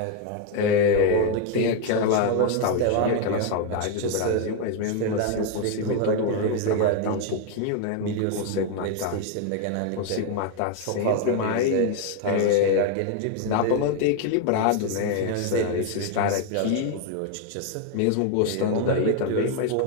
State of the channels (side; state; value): both; different; correlation 0.01